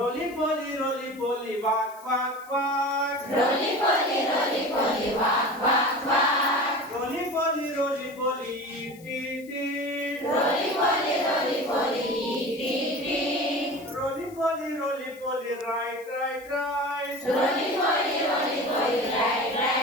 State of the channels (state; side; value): noise; left; hiss, 24 dB below the sound